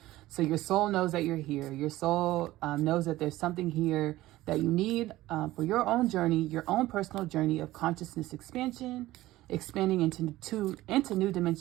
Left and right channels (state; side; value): quieter; left; 16.6 dB